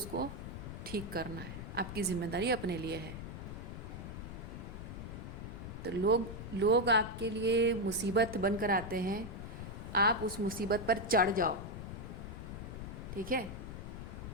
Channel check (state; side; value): noise; left; rumble, 8 dB below the sound